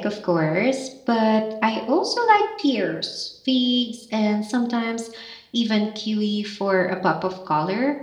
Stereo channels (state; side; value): identical; both; correlation 1.00